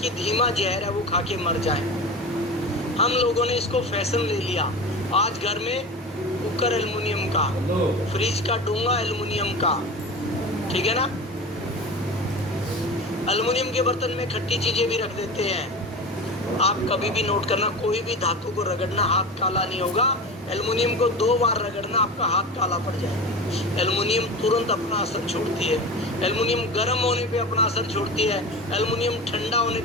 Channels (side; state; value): both; normal; correlation 0.30